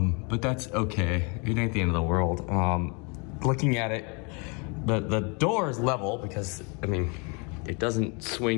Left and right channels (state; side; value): quieter; right; 32.4 dB